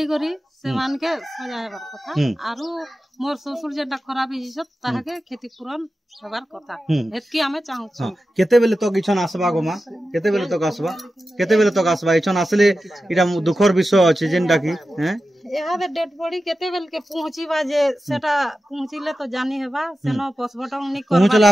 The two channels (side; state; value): both; normal; correlation 0.93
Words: करी से मान के सजा हेबार कथा आरो मोर ससुर जेटा खराब हिसत ताहा के क्षतिपूरण हेबार कथा एतकी हमें चाहू छ केते बेले तो किछन आसबा गो मा केते बेले तो आसबा इछन आसले इटा दुखर विषय अछि जेनटा की हैं यहाँ पे डेड बॉडी केते बेल के पहुंचीबा जे सेटा पहुंचिले तो जानी हेबा सेनो पोस्टमार्टम नि